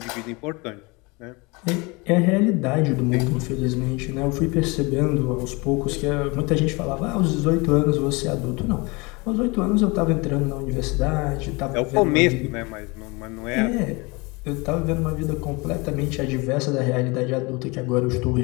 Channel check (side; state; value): right; quieter; 26.6 dB